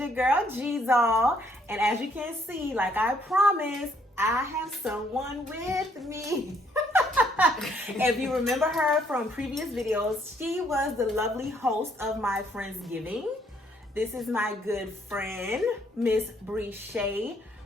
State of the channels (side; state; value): both; normal; correlation 0.67